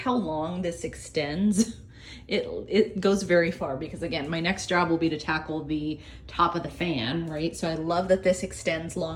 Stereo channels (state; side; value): identical; both; correlation 1.00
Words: long this extends. It goes very far, because again, my next job will be to tackle the top of the fan, right? So I love that this extends